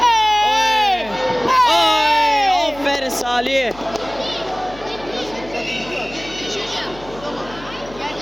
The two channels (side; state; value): left; noise; hum, 19 dB below the sound